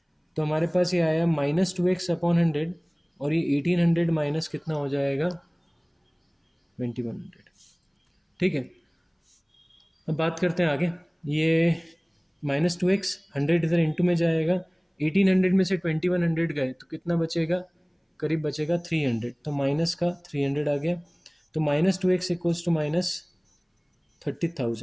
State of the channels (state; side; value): identical; both; correlation 1.00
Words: तो हमारे पास ये आया -2x/100, और ये 1800 माइनस कितना हो जाएगा 2100। ठीक है, अब बात करते हैं आगे। ये -2x 100 इधर इंटू में जाएगा, 1800 में से 2100 गए तो कितना बचेगा, करीब बचेगा 300, तो माइनस का 300 आ गया। तो -2x इक्वल्स टू